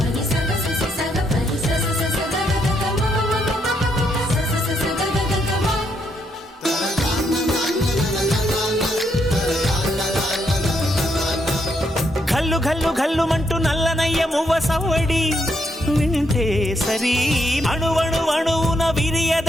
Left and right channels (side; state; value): both; normal; correlation 0.76